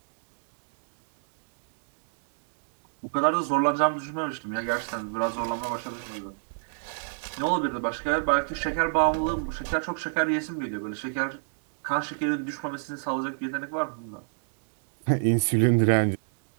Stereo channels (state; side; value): silent; left; digital silence